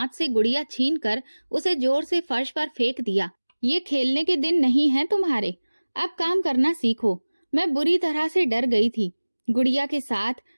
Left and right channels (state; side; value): inverted; both; correlation -1.00